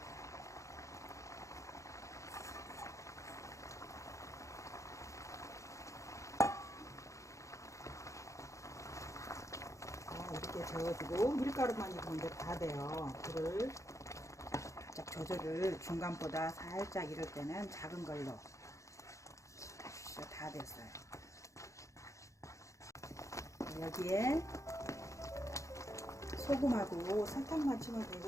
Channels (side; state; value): right; late; 0.15 ms